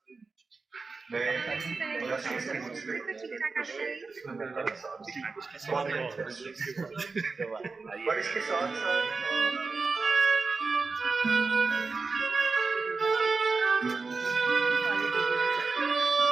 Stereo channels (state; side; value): quieter; left; 4.2 dB